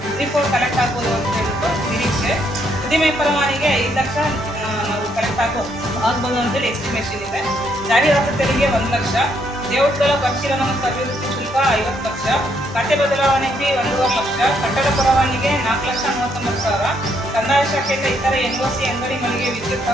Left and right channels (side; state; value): both; normal; correlation 0.73